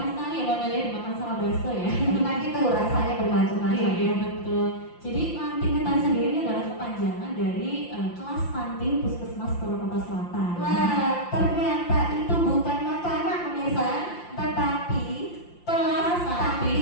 sekali ya Mbak Melia, dimakan sama bakso ya. Enak itu, rasanya bermacam-macam. Iya betul. Jadi lantin ketan sendiri ini adalah kepanjangan dari kelas stunting Puskesmas Purwakarta Selatan. Wah, ternyata itu bukan makanan pemirsa, tetapi kelas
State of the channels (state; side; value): late; right; 5.8 ms